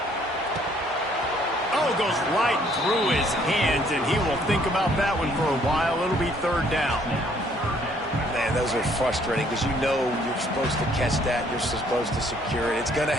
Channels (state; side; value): normal; both; correlation 0.63